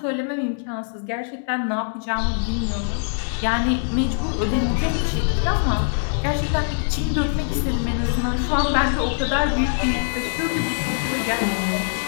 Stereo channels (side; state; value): right; silent; 63 dB below the other